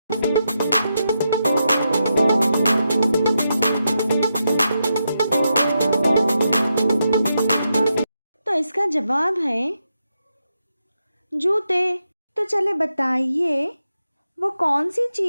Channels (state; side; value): inverted; both; correlation -0.85